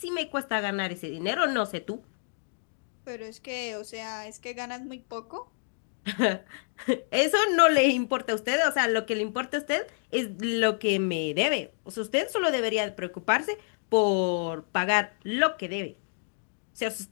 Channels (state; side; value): silent; right; digital silence